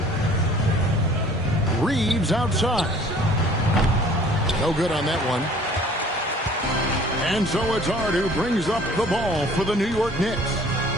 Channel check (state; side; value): normal; both; correlation 0.52